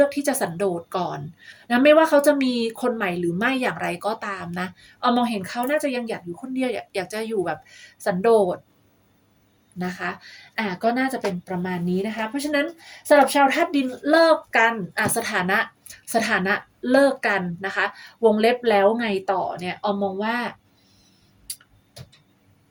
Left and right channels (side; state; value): both; identical; correlation 1.00